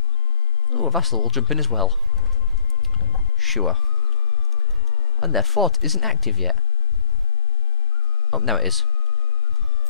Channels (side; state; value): both; normal; correlation 0.09